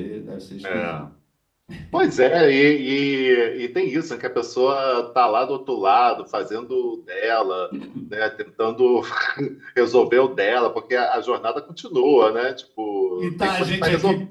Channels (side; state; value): both; identical; correlation 1.00